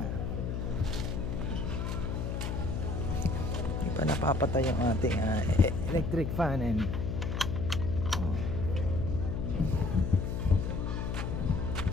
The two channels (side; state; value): left; noise; hum, 2 dB below the sound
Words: hindi pa napapatay yung ating electric fan and